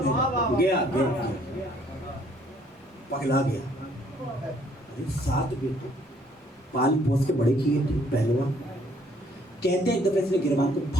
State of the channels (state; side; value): normal; both; correlation 0.63